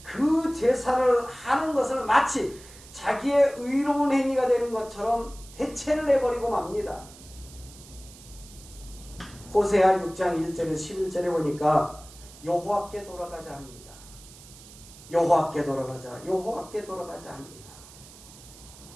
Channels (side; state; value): right; noise; hiss, 20 dB below the sound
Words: 그 제사를 하는 것을 마치 자기의 의로운 행위가 되는 것처럼 대체를 해버리고 맙니다. 호세아 6장 1절에서 11절에 보니까 여호와께 돌아가자 합니다. 여호와께 돌아가자, 여호와께 돌아가자 합니다.